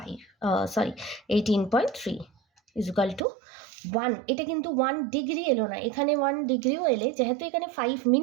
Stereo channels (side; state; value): left; drops out; at 3.2 s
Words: ইজুকাল টু 1। এটা কিন্তু 1 ডিগ্রি এলো না, এখানে 1 ডিগ্রিও এলে, যেহেতু এখানে 5